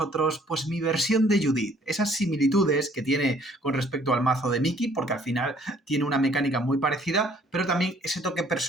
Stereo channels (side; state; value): both; normal; correlation 0.60